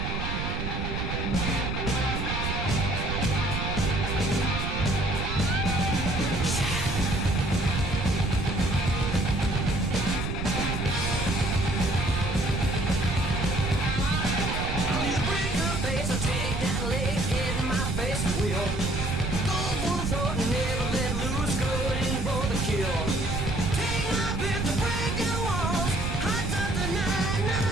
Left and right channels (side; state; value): right; noise; rumble, 3 dB below the sound